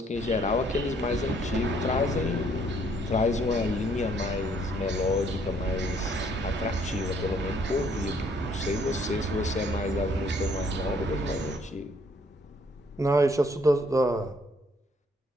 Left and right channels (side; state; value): both; normal; correlation 0.65